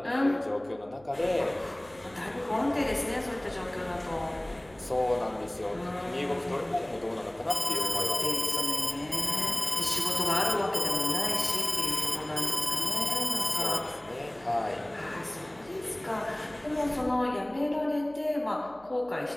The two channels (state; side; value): noise; right; hum, 26 dB below the sound